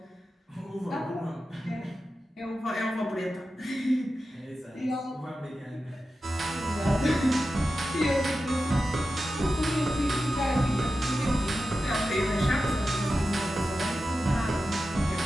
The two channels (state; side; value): normal; both; correlation 0.92